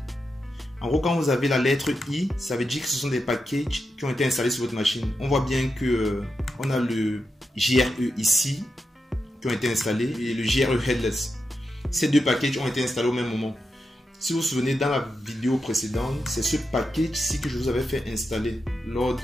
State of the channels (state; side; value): normal; both; correlation 0.88